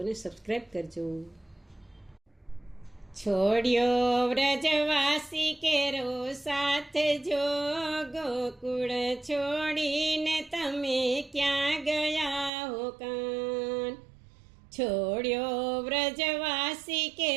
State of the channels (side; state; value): left; drops out; at 12.5 s